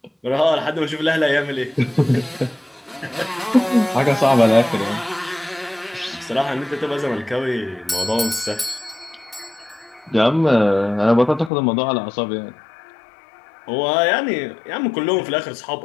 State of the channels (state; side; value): drops out; right; at 11.5 s